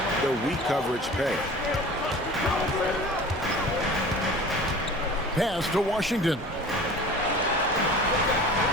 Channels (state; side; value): normal; both; correlation 0.41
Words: the weak coverage pay. Pass to Washington.